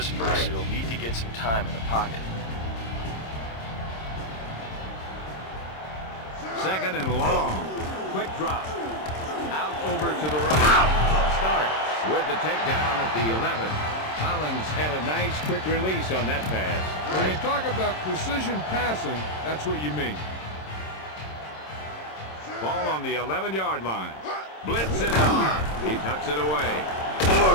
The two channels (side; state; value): right; late; 26 ms